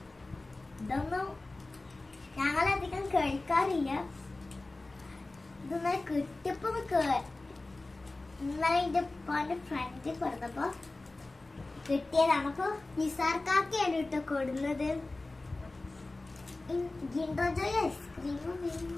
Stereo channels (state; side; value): quieter; right; 3.1 dB